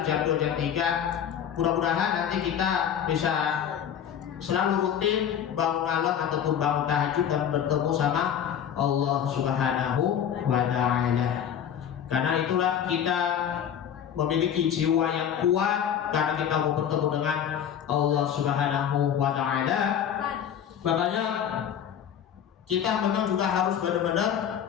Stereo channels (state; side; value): quieter; right; 9.0 dB